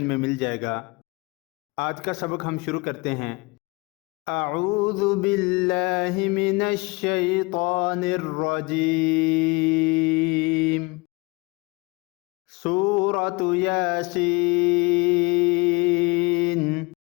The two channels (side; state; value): right; quieter; 26.2 dB